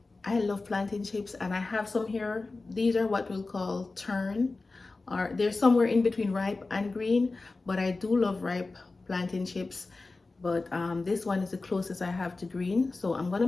I love plantain chips and I have some here. These are what we'll call turn, or they're somewhere in between ripe and green, but I do love ripe plantain chips. But this one is the closest I have to green, so I'm going to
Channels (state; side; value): quieter; right; 3.5 dB